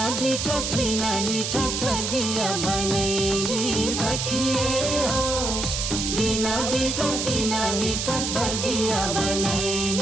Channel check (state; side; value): noise; right; hiss, 2 dB below the sound